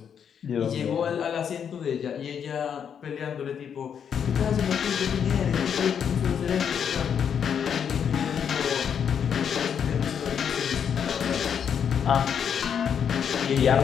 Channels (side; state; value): right; quieter; 7.8 dB